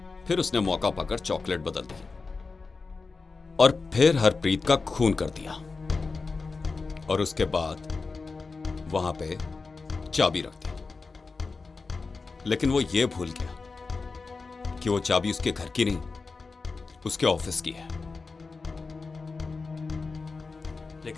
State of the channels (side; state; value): right; quieter; 4.2 dB